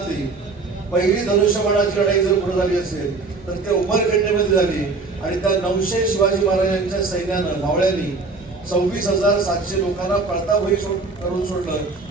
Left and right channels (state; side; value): quieter; left; 3.9 dB